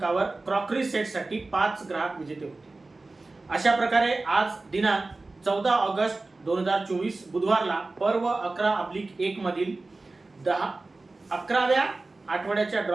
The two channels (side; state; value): left; quieter; 3.3 dB